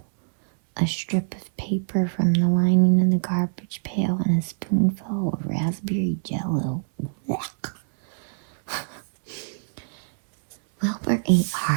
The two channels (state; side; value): silent; left; 63 dB below the other